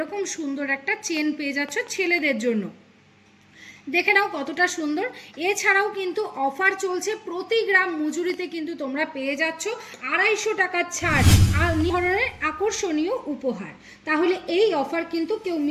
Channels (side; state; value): both; identical; correlation 1.00